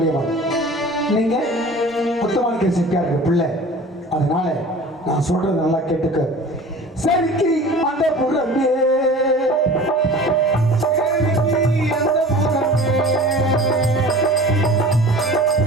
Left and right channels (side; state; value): both; normal; correlation 0.41